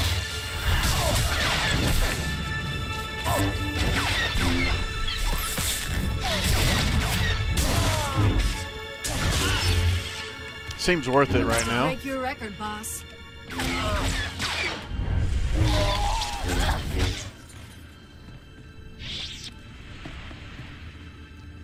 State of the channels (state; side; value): identical; both; correlation 1.00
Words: Seems worth it right now. Break your record, boss.